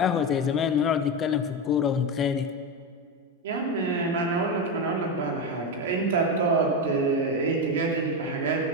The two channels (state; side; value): normal; both; correlation 0.14